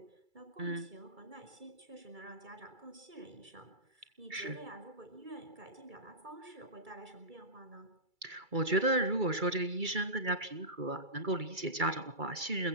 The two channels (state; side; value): late; left; 2.3 ms